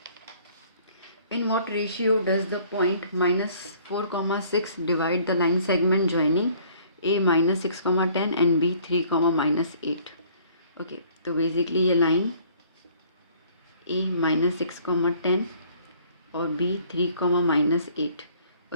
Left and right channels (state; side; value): inverted; both; correlation -0.57